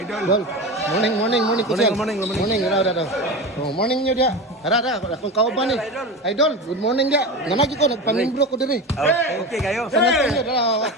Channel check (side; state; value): both; normal; correlation 0.25